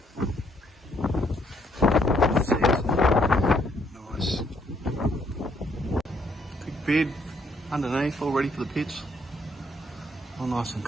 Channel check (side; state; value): both; normal; correlation 0.70